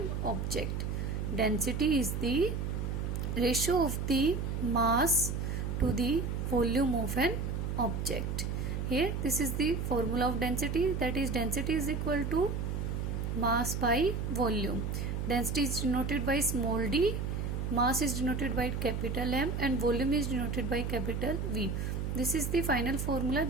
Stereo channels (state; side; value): noise; right; hum, 2 dB below the sound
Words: object. Density is the ratio of the mass to the volume of an object. Here this is the formula of density, that is density is equal to mass by volume. Density is denoted by small d, mass is denoted by capital M and volume is denoted by capital V. This is the final formula,